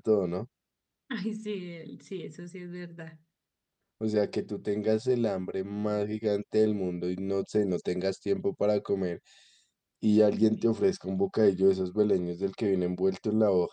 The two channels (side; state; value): both; identical; correlation 1.00